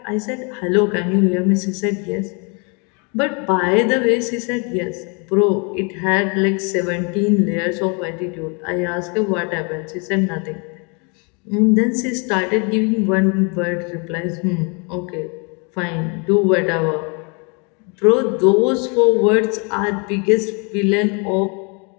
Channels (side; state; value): right; quieter; 33.8 dB